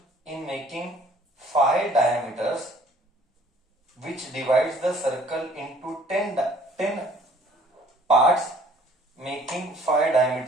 in making 5 diameters, which divides the circle into 10 parts, making 5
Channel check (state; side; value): normal; both; correlation 0.56